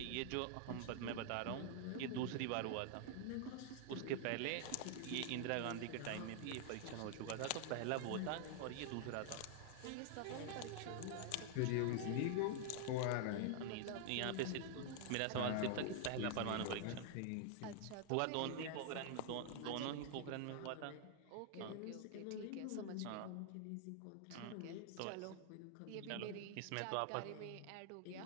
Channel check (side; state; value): both; different; correlation 0.00